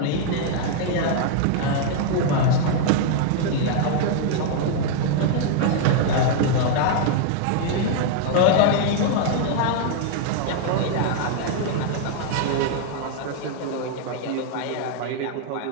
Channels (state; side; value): different; both; correlation 0.00